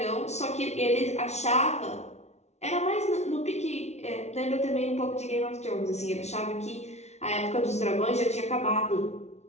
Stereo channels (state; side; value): late; right; 0.32 ms